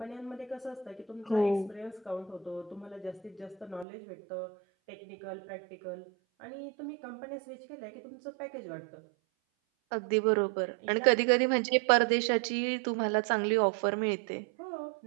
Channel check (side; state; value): left; drops out; at 3.9 s